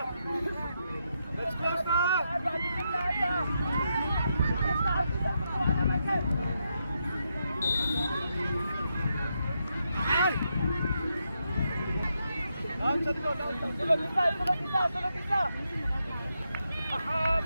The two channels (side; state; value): both; inverted; correlation -0.82